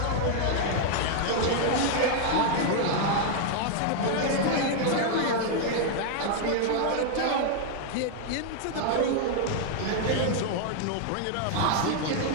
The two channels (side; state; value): both; different; correlation 0.00